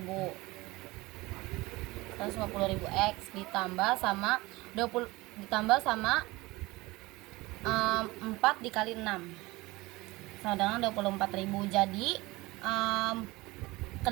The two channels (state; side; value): quieter; left; 21.3 dB